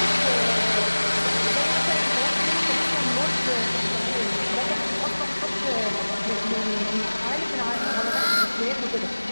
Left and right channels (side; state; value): both; inverted; correlation -1.00